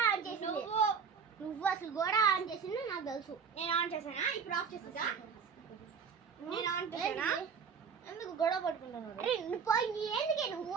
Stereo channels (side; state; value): left; quieter; 6.2 dB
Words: ఆన్ చేసింది? నువ్వు అసలు గోడ ఆన్ చేసింది నాకు తెలుసు. నేను ఆన్ చేశానా? ఇప్పుడు ఆఫ్ చేస్తుందా? నేను ఆన్ చేశానా? ఎందుకు గొడవ పట్టుకుంటున్నారు? అరే ఎందుకే నువ్వు